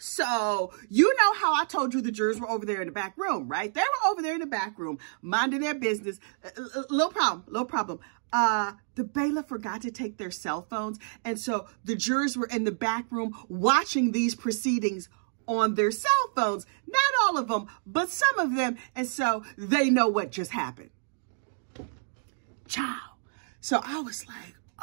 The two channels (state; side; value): silent; left; digital silence